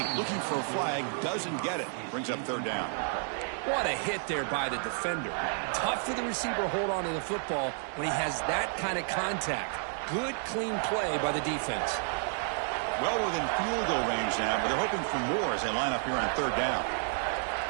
Looking for a flag. Doesn't get it. Brings up third down. What a hit there by the defender. Tough for the receiver to hold on to the football when he has that kind of contact. Good, clean play by the defense. Well within field goal range now, but they're hoping for more as they line up here on third down.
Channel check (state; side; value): silent; left; 55 dB below the other